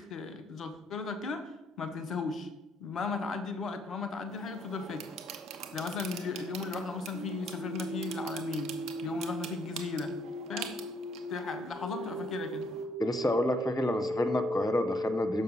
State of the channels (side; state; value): both; normal; correlation 0.70